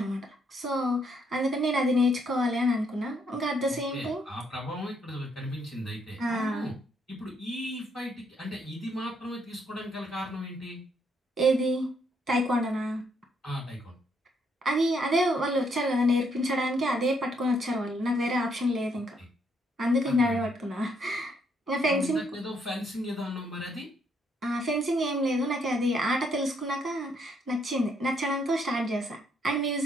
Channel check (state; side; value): normal; both; correlation 0.72